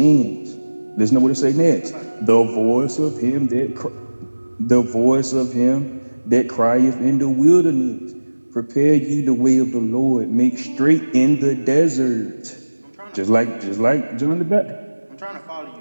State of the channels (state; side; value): inverted; both; correlation -1.00